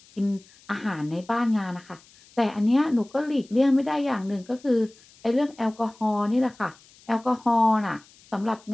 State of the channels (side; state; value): left; noise; hiss, 27 dB below the sound